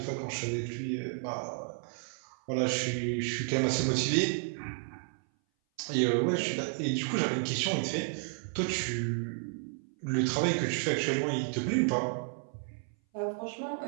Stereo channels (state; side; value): silent; left; 56 dB below the other